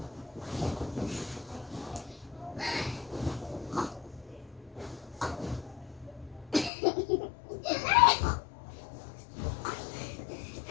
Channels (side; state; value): right; drops out; at 6.7 s